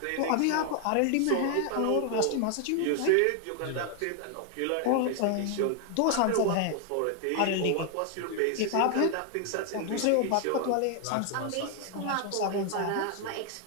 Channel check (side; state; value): both; different; correlation 0.00